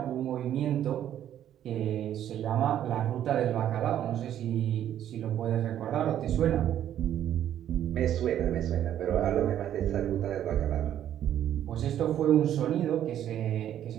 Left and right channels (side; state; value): left; quieter; 10.9 dB